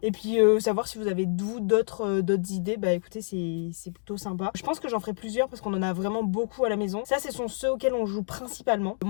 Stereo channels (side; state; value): right; silent; 60 dB below the other